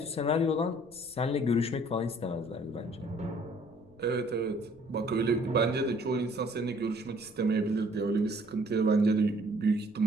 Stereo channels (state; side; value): noise; left; rumble, 28 dB below the sound